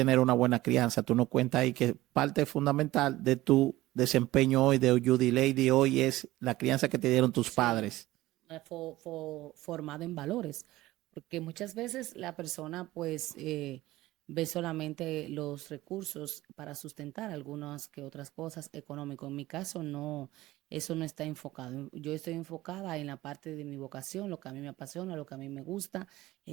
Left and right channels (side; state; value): left; quieter; 17.2 dB